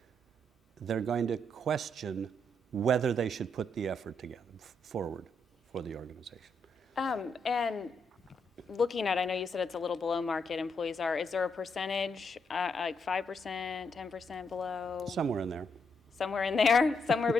they're going to question whether they should put the effort forward for the organization. And looking at, I know you said it's a little below market employees are, is there a percentage, like 5%, 10% below? Somewhere in there. Somewhere in there? Somewhere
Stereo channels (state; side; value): normal; both; correlation 0.78